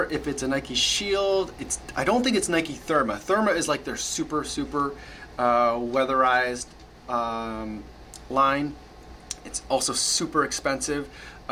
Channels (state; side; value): identical; both; correlation 1.00